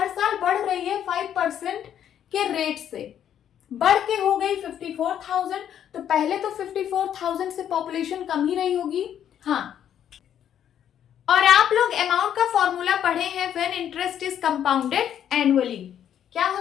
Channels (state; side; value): quieter; right; 9.8 dB